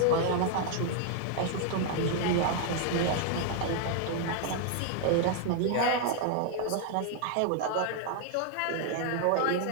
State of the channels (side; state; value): both; different; correlation 0.00